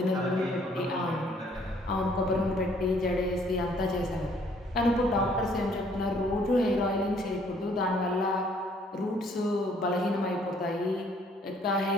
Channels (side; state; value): both; normal; correlation 0.62